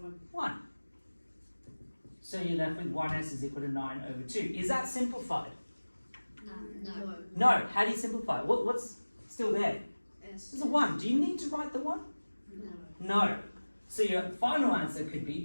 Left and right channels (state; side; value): inverted; both; correlation -1.00